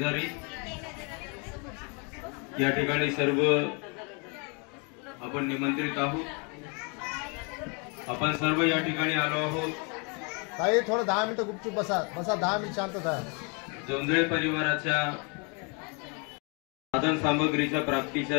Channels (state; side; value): quieter; right; 34.2 dB